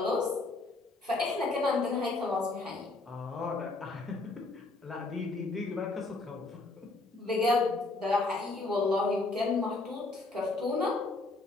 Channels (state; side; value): quieter; right; 3.2 dB